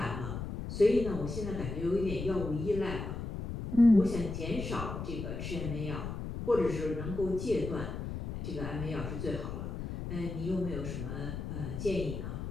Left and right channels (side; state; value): left; noise; rumble, 6 dB below the sound